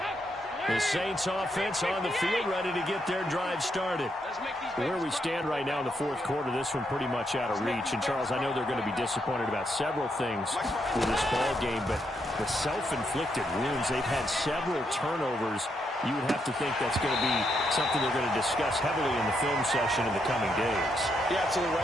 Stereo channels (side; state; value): both; normal; correlation 0.79